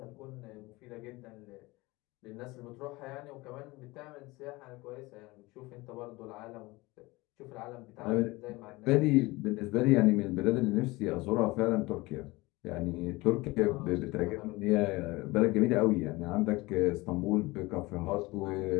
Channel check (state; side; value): quieter; right; 21.9 dB